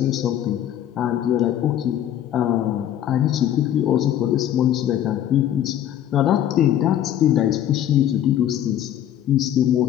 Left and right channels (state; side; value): quieter; right; 11.1 dB